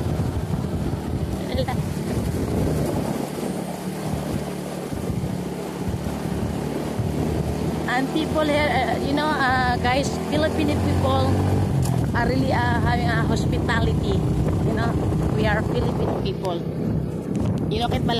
And people here, you know, guys, Filipino people are really having a hospitality. You know, we are Filipino people. You know, kahit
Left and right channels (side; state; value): both; identical; correlation 1.00